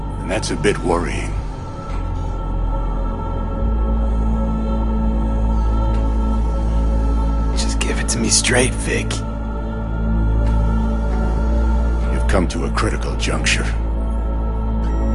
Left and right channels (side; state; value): both; identical; correlation 1.00